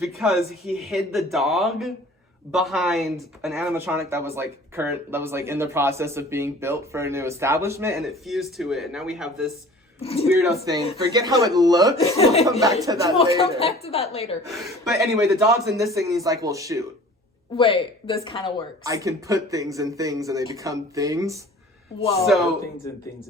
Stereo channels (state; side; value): normal; both; correlation 0.46